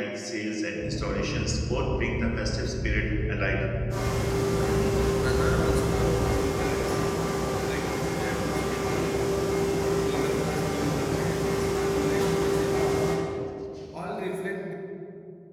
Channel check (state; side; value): identical; both; correlation 1.00